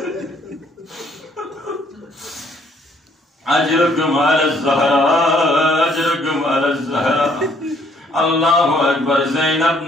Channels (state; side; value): normal; both; correlation 0.65